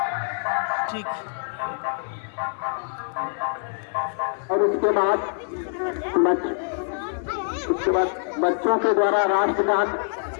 ठीक। और उसके बाद बच्चों के द्वारा राष्ट्रगान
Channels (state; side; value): silent; right; 57 dB below the other